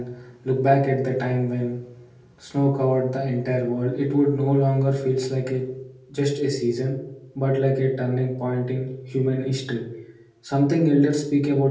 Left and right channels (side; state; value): both; identical; correlation 1.00